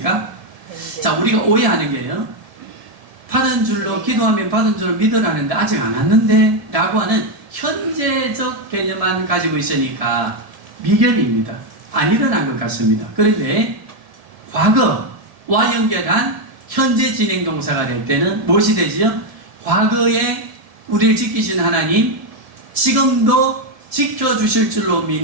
자, 우리가 오해하는 게요, 받은 줄로 기도하면 받은 줄로 믿으라는데 아직 안 왔는데 라고 하는 현재적 개념만 가지고 있으니까 미결입니다. 안 일어난 것 같습니다. 그런데 과거와 연결한 현재 진행 동사가 될 때는 무엇이 되지요? 과거에 우리를 지키신 하나님, 지금도 지켜주실 줄로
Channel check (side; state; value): left; late; 1.7 ms